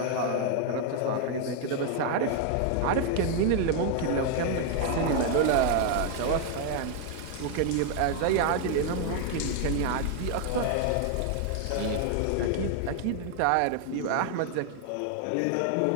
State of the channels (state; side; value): different; both; correlation 0.00